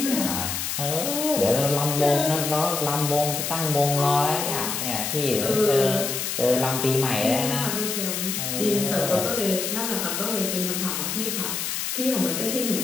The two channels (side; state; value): left; noise; hiss, 2 dB below the sound